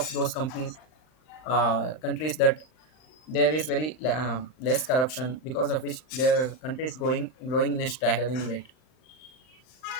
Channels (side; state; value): right; late; 39 ms